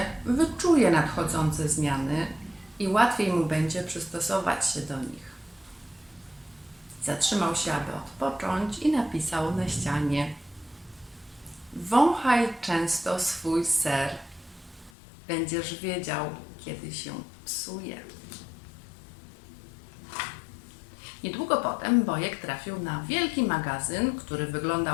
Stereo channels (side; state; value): right; drops out; at 14.9 s